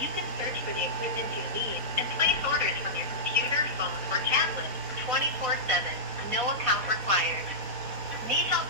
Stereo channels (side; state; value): left; late; 4.2 ms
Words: you can search for the equipment you need and place orders from your computer, phone, or tablet 24/7. No account required. Need help